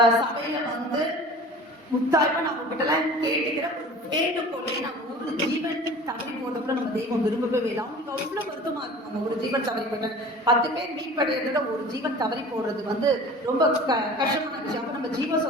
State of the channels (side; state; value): both; normal; correlation 0.41